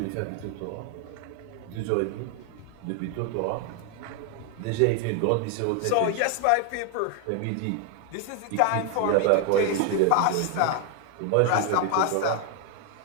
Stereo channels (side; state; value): both; different; correlation 0.01